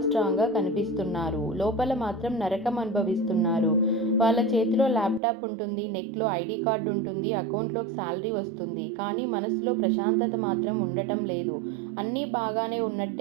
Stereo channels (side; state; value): left; drops out; at 5.2 s